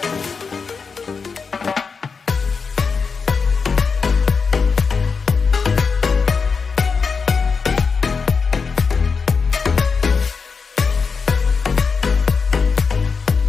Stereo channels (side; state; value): right; quieter; 5.2 dB